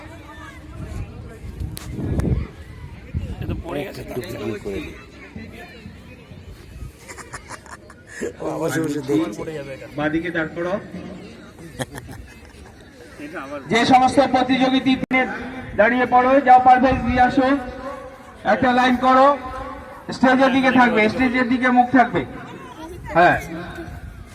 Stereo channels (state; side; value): identical; both; correlation 1.00